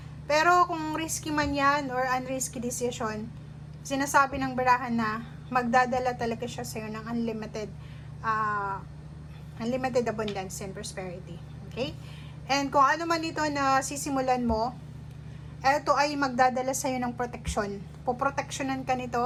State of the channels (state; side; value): identical; both; correlation 1.00